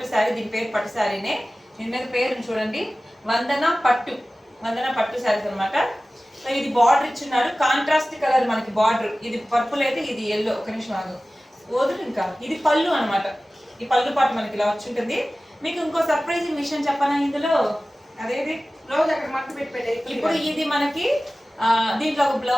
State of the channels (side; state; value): both; normal; correlation 0.96